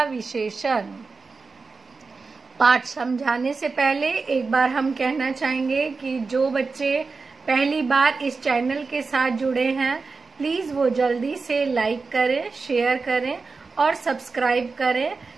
विशेषण। पाठ समझाने से पहले एक बार हम कहना चाहेंगे कि जो बच्चे पहली बार इस चैनल के साथ जुड़े हैं, प्लीज वो जल्दी से लाइक करें, शेयर करें और सब्सक्राइब करें,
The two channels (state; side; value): quieter; left; 4.3 dB